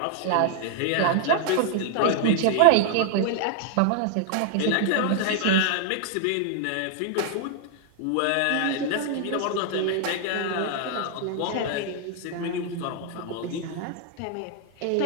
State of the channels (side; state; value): both; different; correlation 0.00